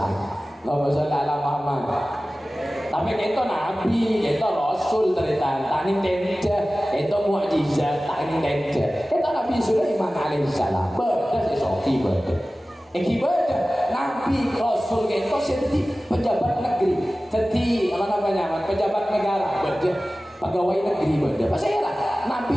Allahumma sholli ala Muhammad. Tapi itu Nabi, itu Rasul ternyata. Tani tenda, itu mukjizat. Tani tenda. Itu Nabi Sulaiman alaihissalam. Beda sesoki beda. Ibadah Nabi Rasul itu seperti pejabat negeri, seperti apa namanya pejabat negara. Beda. pegawai negeri beda. Pasal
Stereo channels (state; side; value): normal; both; correlation 0.96